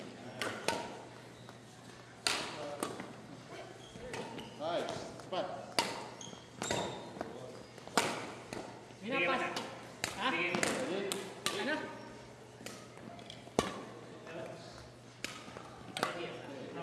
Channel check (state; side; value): identical; both; correlation 1.00